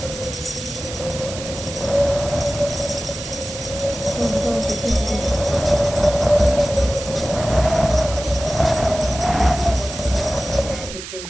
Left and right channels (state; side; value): noise; right; hiss, 10 dB below the sound